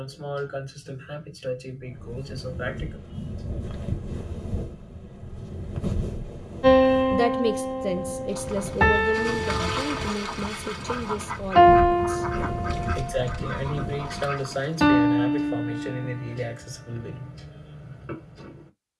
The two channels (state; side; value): identical; both; correlation 1.00